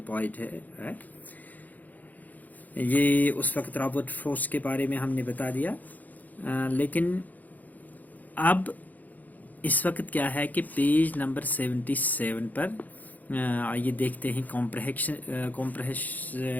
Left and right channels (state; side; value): late; right; 0.081 ms